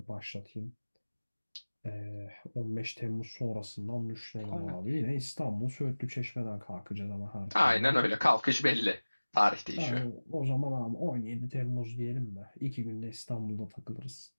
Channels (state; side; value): inverted; both; correlation -1.00